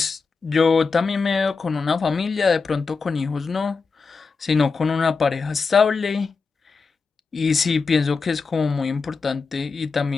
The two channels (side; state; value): right; quieter; 4.7 dB